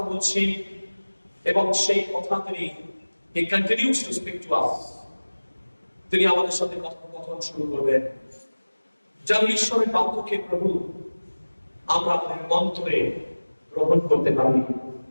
বলছি এবং সেই কথা তিনি continues to speak to us. তিনি আমাদের সাথে কথোপকথন শুরু করবেন। যেন ঈশ্বরের বাক্যকে প্রভু আমরা আমাদের অন্তরে গ্রহণ করতে পারি।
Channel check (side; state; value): both; inverted; correlation -1.00